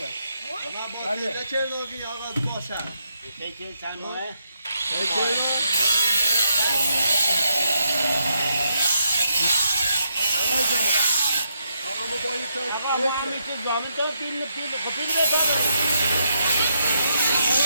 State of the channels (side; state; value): both; inverted; correlation -0.79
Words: ما با پیله چه نوگی آقا باشم یکی چند ماهه آقا ما با یک آقا ما هم میشه زامن تو پیل بده